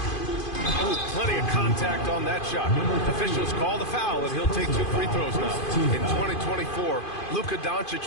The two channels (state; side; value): late; right; 2.5 ms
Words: Oh, plenty of contact on that shot. Officials call the foul, and he'll take 2 free throws now. In 2024, Luka